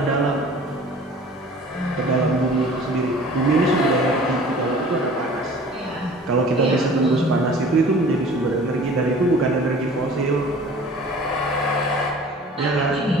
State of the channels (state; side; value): normal; both; correlation 0.46